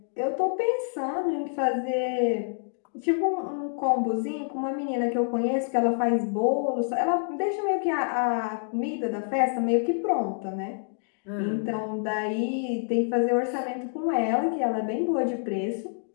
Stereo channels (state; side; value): silent; right; digital silence